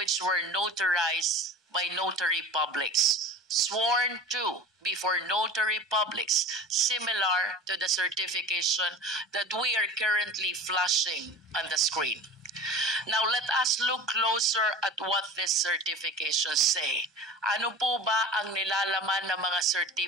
were notarized by notary publics, sworn to before notary publics, similar to the certification that we are currently flashing on the screen. Now, let us look closer at what these certifications say. Ano po ba ang nilalaman ng mga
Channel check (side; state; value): both; normal; correlation 0.37